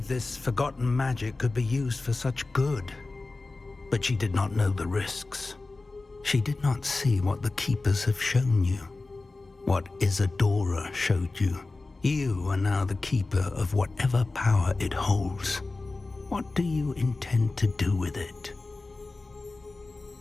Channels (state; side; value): quieter; right; 3.4 dB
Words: this forgotten magic could be used for such good, but she did not know the risks. She did not see what the Keepers have shown you, what Isadora showed you. You are now the Keeper of whatever power it holds. What do you intend to do with it?